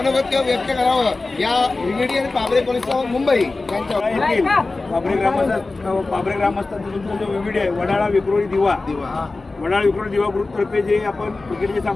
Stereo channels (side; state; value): right; quieter; 3.5 dB